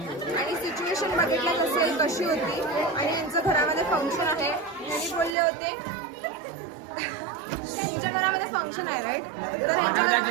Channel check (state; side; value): drops out; left; at 5.4 s